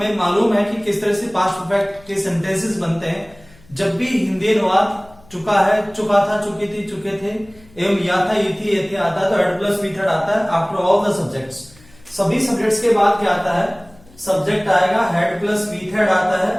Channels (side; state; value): left; noise; hum, 26 dB below the sound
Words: मालूम है कि किस तरह से पास्ट परफेक्ट के सेंटेंसेस बनते हैं जब भी हिंदी अनुवाद चुका है, चुका था, चुकी थी, चुके थे एवं या था, ये थी, ये थे आता है तो हेड प्लस वी थर्ड आता है आफ्टर ऑल द सब्जेक्ट्स। सभी सब्जेक्ट्स के बाद क्या आता है? सब्जेक्ट आएगा, हेड प्लस वी थर्ड आता